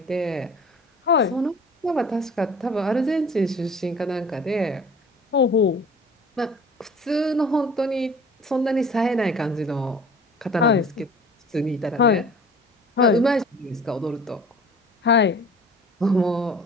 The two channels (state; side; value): normal; both; correlation 0.46